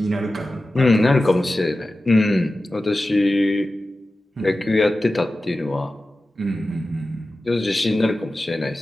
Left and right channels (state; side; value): normal; both; correlation 0.95